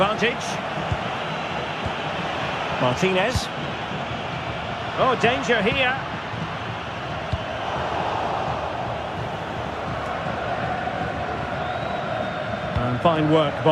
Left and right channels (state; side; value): identical; both; correlation 1.00